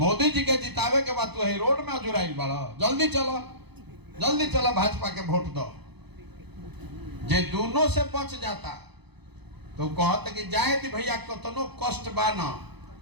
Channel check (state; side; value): late; left; 0.98 ms